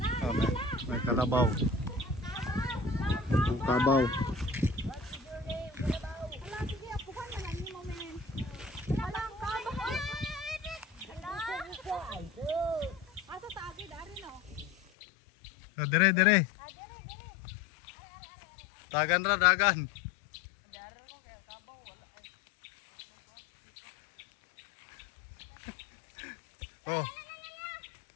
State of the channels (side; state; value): right; drops out; at 14.8 s